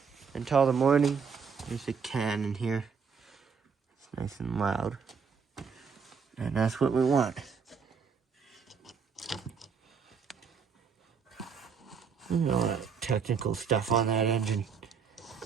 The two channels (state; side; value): quieter; left; 6.0 dB